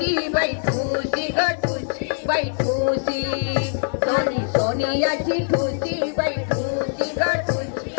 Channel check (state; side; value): silent; right; 58 dB below the other